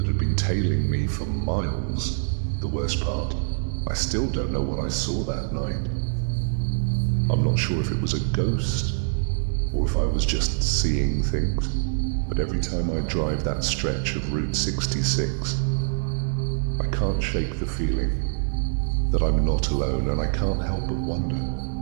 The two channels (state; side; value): silent; left; digital silence